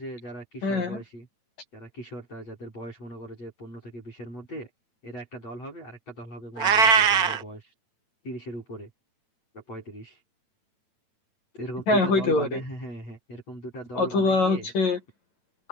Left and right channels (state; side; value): late; right; 8.9 ms